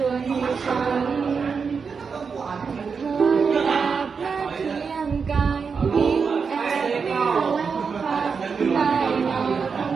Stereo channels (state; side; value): quieter; left; 5.6 dB